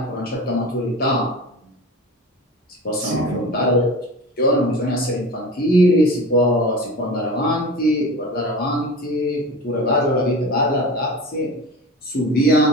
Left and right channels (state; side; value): normal; both; correlation 0.32